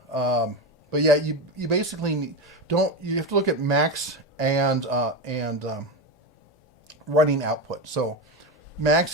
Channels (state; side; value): normal; both; correlation 0.17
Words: but yeah, you basically you have to look at max and running output. So